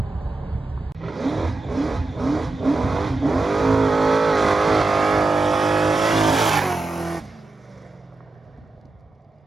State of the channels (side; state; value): left; quieter; 3.2 dB